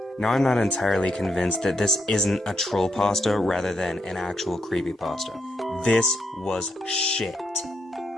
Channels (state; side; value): normal; both; correlation 0.79